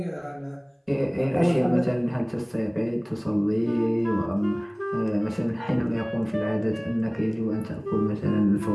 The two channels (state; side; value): identical; both; correlation 1.00